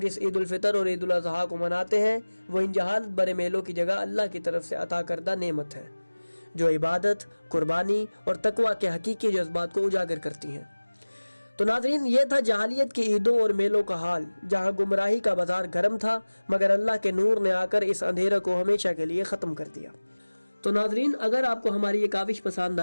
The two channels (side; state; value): both; inverted; correlation -1.00